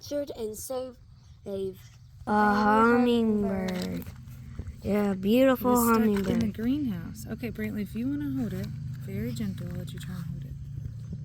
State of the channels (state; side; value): identical; both; correlation 1.00